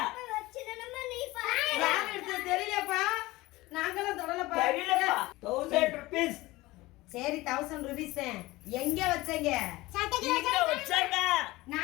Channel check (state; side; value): quieter; right; 19.8 dB